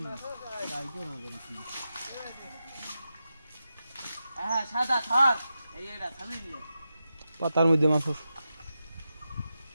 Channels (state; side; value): inverted; both; correlation -0.90